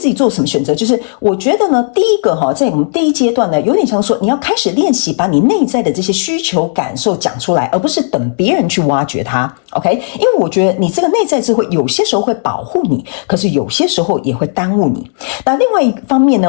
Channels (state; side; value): silent; right; digital silence